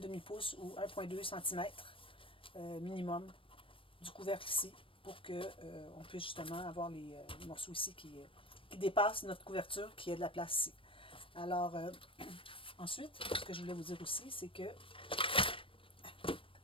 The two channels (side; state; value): right; late; 0.25 ms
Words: ou 1,2 cm minimum du couvercle ici, pour qu'on puisse justement avoir les morceaux ici qui dépassent notre couverture, qui ait de la place ici. Alors, ensuite, ce que je voulais vous dire aussi, c'est que